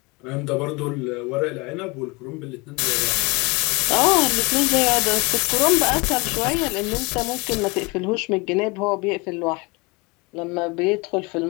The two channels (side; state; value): right; quieter; 27.0 dB